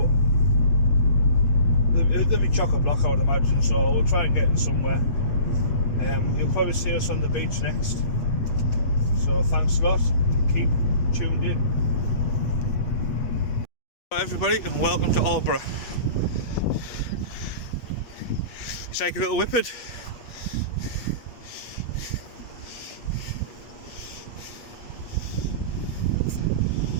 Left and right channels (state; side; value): late; right; 8.3 ms